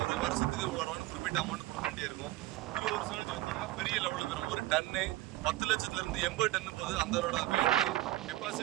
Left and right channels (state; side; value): quieter; left; 17.4 dB